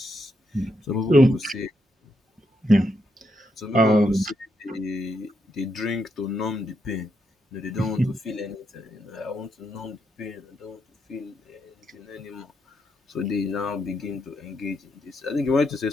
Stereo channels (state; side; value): normal; both; correlation 0.80